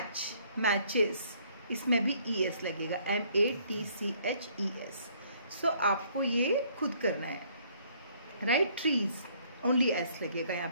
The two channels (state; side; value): inverted; both; correlation -0.63